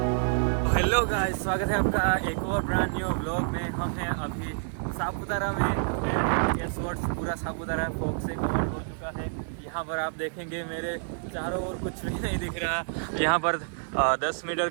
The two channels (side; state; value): left; silent; 59 dB below the other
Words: हेलो गाइस, स्वागत है आपका एक और ब्रांड न्यू व्लॉग में। हम हैं अभी सापुतारा में एंड गेस व्हाट, पूरा सापुतारा फॉग से कवर हो चुका है। यहाँ पर आप देखेंगे मेरे चारों ओर कुछ भी नहीं दिख रहा। यहाँ पर 10 मीटर